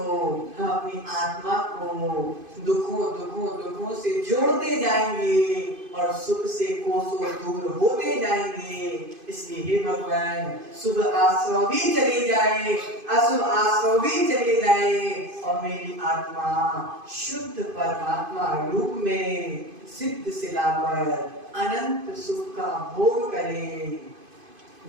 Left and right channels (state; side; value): late; left; 2.5 ms